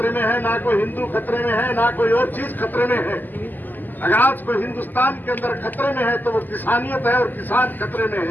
में है, ना कोई हिंदू खतरे में है, ना कोई और चीज खतरे में है। अगर आज कोई हिंदुस्तान के अंदर खतरे में है तो वो किसानियत है और किसान खतरे में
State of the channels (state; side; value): late; right; 0.086 ms